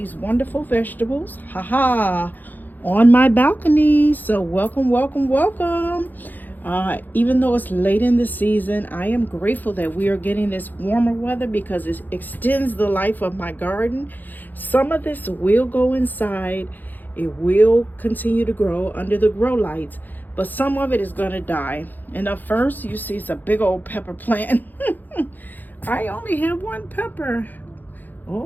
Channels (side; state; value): right; late; 0.086 ms